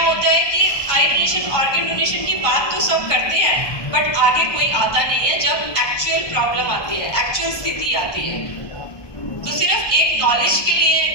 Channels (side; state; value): right; late; 1.2 ms